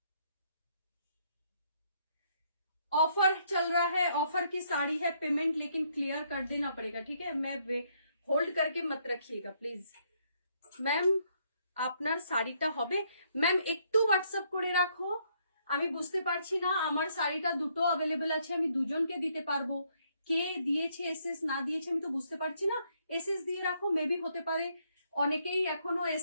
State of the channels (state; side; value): inverted; both; correlation -0.71